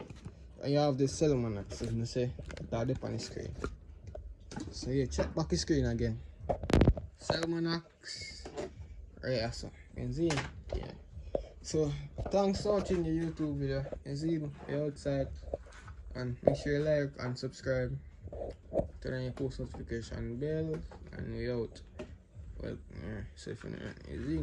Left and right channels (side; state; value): both; identical; correlation 1.00